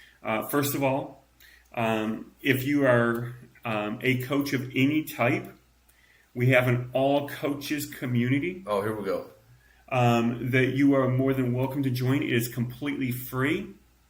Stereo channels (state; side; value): identical; both; correlation 1.00